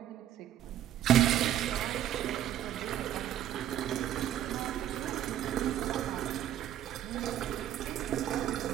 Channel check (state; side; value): quieter; left; 11.3 dB